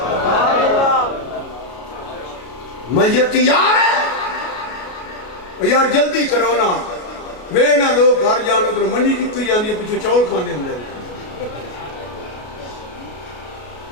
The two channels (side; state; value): right; late; 33 ms